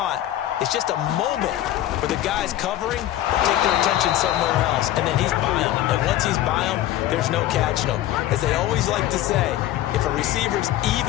is just a moment where the guys covering take their attention somewhere else, and then he's by him. And once he's by him, there's no catching him. As they always like to say, if a receiver's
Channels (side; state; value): right; quieter; 13.5 dB